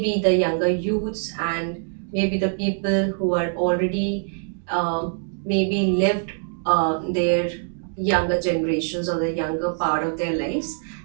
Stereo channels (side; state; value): left; silent; digital silence